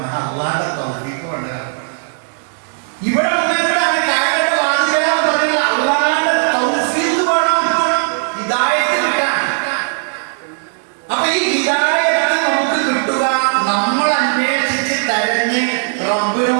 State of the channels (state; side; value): silent; left; digital silence